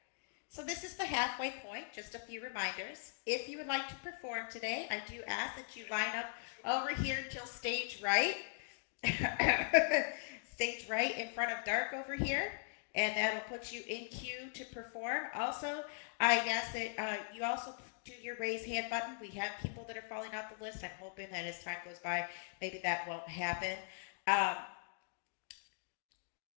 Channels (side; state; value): right; silent; digital silence